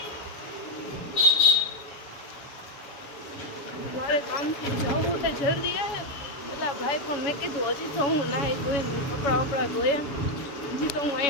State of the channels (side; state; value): right; late; 7.1 ms